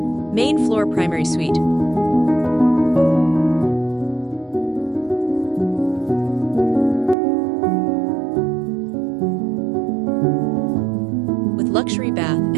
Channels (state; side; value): drops out; left; at 7.2 s